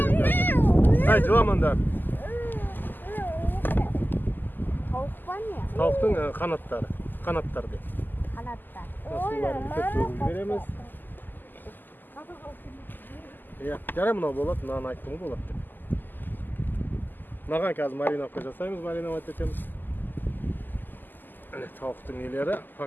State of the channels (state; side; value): late; right; 0.089 ms